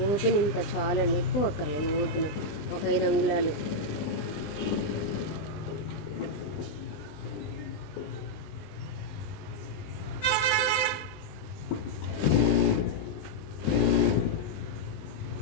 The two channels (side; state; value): right; late; 20 ms